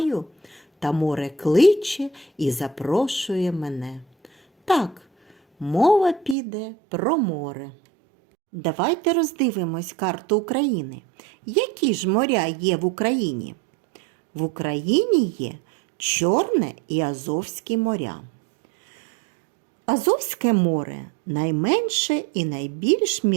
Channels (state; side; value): drops out; left; at 6.4 s